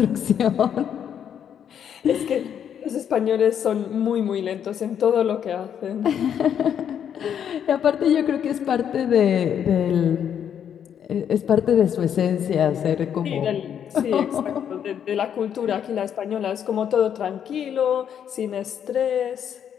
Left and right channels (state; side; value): quieter; right; 8.8 dB